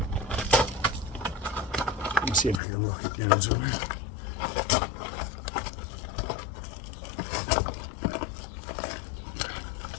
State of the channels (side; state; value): right; drops out; at 2.6 s